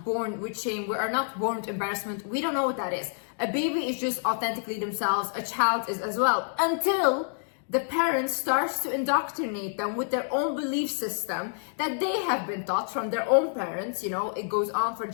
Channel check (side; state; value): right; silent; digital silence